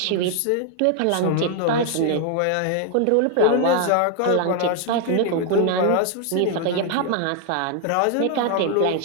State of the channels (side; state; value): both; different; correlation 0.00